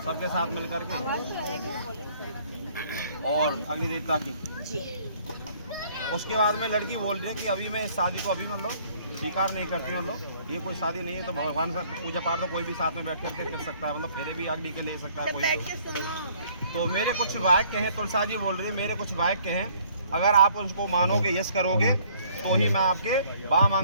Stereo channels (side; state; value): both; inverted; correlation -0.59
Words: सबके साथ मिल करके और अग्नि देवता की। उसके बाद में लड़की बोल रही है कि अभी मैं इस शादी को अभी मतलब स्वीकार नहीं करती, मतलब ये कोई शादी नहीं है। तो भगवान से पूजा पाठ तो कोई भी साथ में बैठ करके कर सकता है, मतलब फेरे भी अग्नि के ले सकता है कोई। तो मेरे कुछ वाक्य हैं, तुलसा जी बोल रही है मेरे कुछ वाक्य हैं, अगर आप उसको मानोगे, यस करोगे तो ही मैं आपके बाम